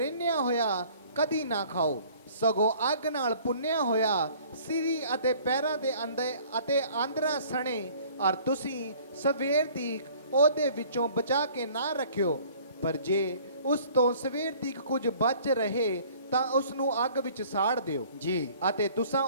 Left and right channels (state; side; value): inverted; both; correlation -0.53